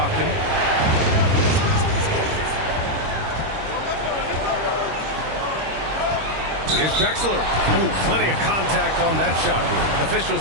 Here's Drexler. Ooh, plenty of contact on that shot.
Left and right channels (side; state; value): left; late; 25 ms